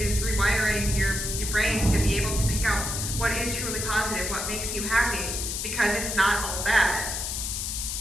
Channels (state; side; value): noise; left; hiss, 3 dB below the sound